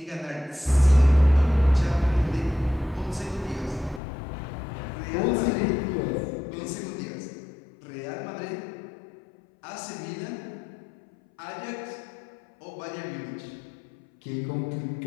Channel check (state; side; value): drops out; right; at 4.0 s